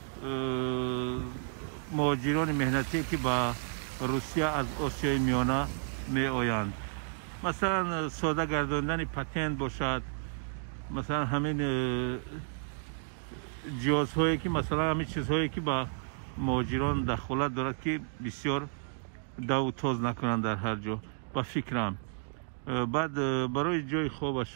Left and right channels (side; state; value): left; silent; digital silence